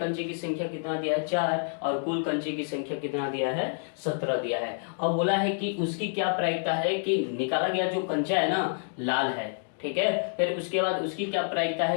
की संख्या कितना दिया है 4 और कुल कंचे की संख्या कितना दिया है 17 दिया है। अब बोला है कि उसकी क्या प्रायिकता है कि निकाला गया जो कंचा है ना लाल है, ठीक है। फिर उसके बाद उसकी क्या प्रायिकता है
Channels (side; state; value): right; silent; 59 dB below the other